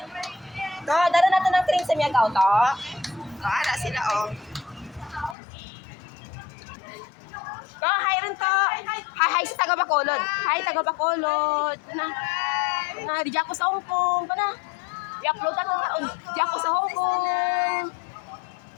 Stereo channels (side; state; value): right; drops out; at 5.4 s